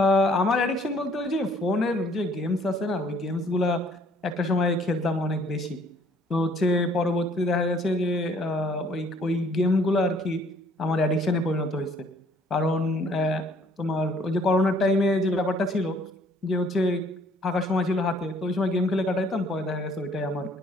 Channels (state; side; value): normal; both; correlation 0.60